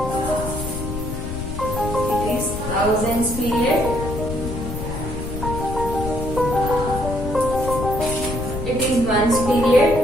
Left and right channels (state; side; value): noise; left; rumble, 6 dB below the sound